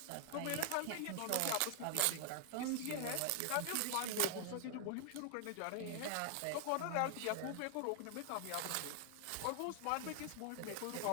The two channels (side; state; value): both; different; correlation 0.00